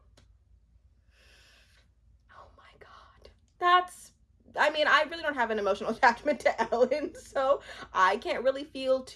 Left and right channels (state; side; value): identical; both; correlation 1.00